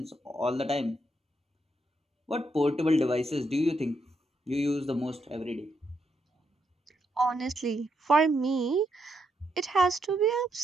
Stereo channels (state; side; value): normal; both; correlation 0.79